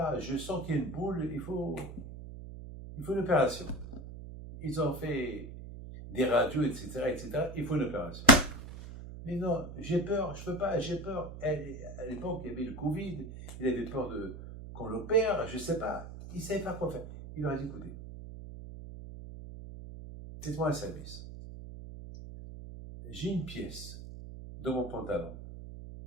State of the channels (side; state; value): right; noise; hum, 11 dB below the sound